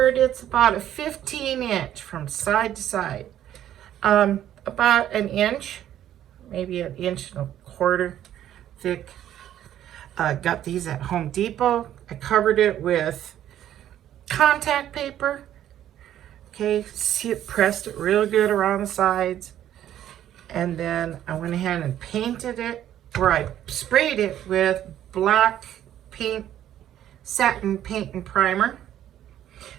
It's about a 15-inch from side to side. About an inch, maybe an inch and a quarter thick. Got these at Home Depot. I covered it with contact paper. Okay, see it, pressed it real good around the sides. And then I went ahead and painted it, or I sprayed it with black paint, satin paint and primer.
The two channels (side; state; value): left; quieter; 11.4 dB